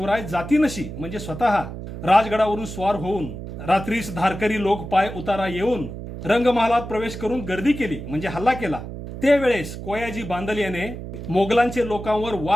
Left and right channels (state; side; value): noise; right; hum, 9 dB below the sound